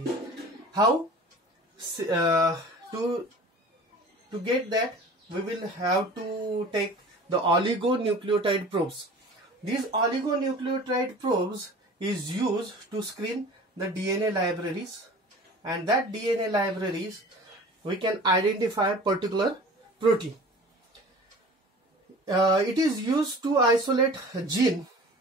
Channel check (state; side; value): normal; both; correlation 0.42